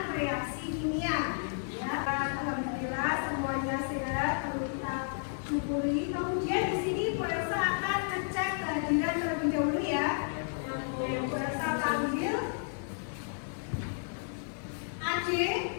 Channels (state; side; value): silent; right; 56 dB below the other